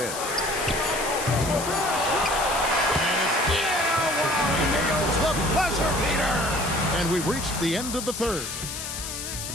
And it's he nails the buzzer beater. And we've reached the end of the third.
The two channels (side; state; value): left; noise; hiss, 7 dB below the sound